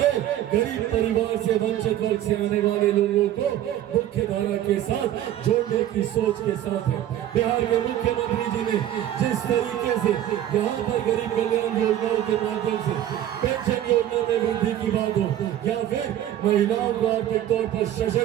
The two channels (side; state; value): left; quieter; 12.0 dB